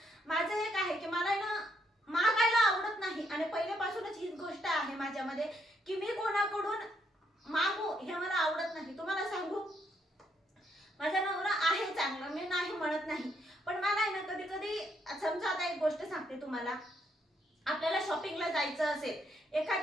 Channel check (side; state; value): both; normal; correlation 0.74